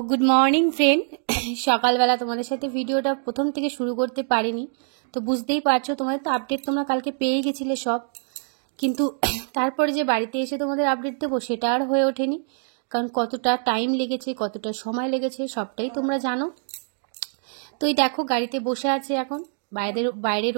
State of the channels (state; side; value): silent; left; 57 dB below the other